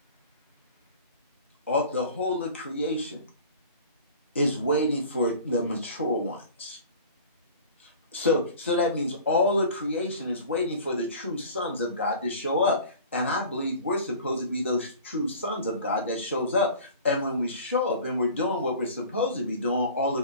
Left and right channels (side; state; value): both; inverted; correlation -0.42